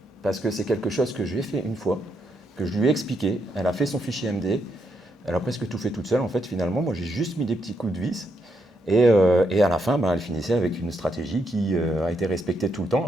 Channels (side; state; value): both; normal; correlation 0.79